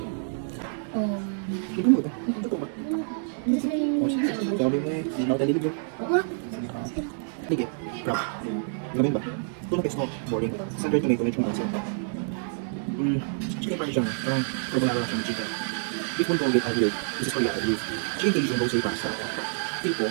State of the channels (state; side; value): silent; left; digital silence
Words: mo ito? Ito ba? Sabi mo eh, hindi na ako talilib. Sige, crap. Gamin ba? Ito na pesto, boring. Sandwich tomato, medyo mga sila. Chicken parmesan, parang carbonara lang siya ng chicken. Beef bulgogi, agilid. This is for yata, beef. Chicken Cajun, rosé pasta. Tipo,